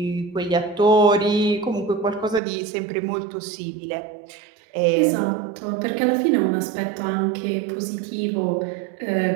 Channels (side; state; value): left; drops out; at 2.4 s